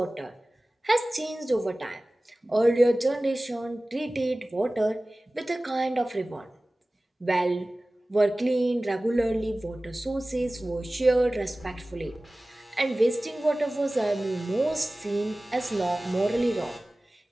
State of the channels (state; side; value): normal; both; correlation 0.98